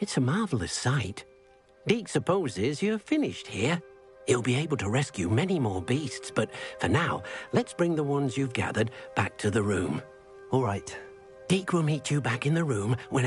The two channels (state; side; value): identical; both; correlation 1.00